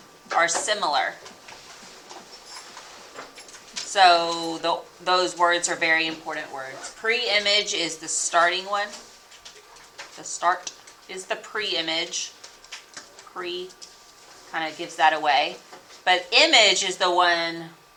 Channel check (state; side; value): identical; both; correlation 1.00